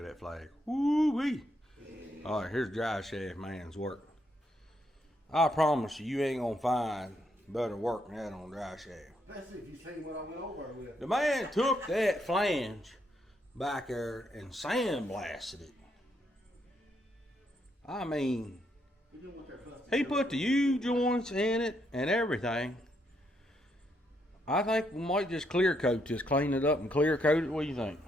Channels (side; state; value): both; normal; correlation 0.76